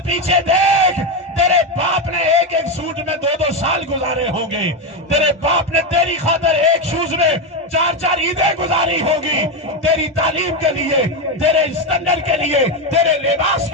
پیچھے دیکھ، تیرے باپ نے ایک سوٹ میں 2 سال گزارے ہوں گے، تیرے باپ نے تیری خاطر ایک شوز میں 4 عیدیں گزاری ہوگی، تیری تعلیم کے لیے، تیرے اسٹینڈرڈ کے لیے، تیرے لباس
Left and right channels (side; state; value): both; normal; correlation 0.10